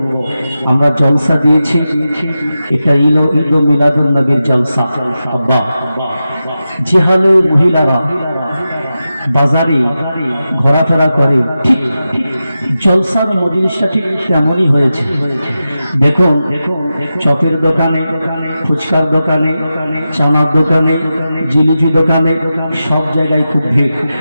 আমরা জলসা দিয়েছি, এটা ঈদ মিলাদুন নবীর জলসা। আব্বা, যে হালে মহিলারা বাজারে ঘোরাফেরা করে ঠিক জলসার মজলিসটা ঠিক তেমনই হয়েছে। দেখুন, চপের দোকানে, ফুচকার দোকানে, চানার দোকানে, জিলিপি দোকানে, সব জায়গায় খুব ভিড়।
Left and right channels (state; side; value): inverted; both; correlation -0.92